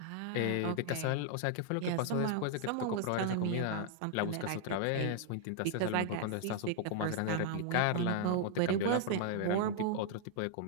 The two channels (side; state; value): both; different; correlation 0.00